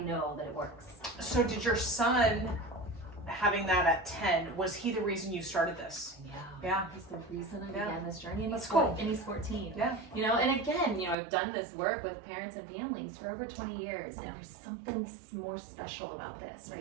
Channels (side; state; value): left; drops out; at 11.2 s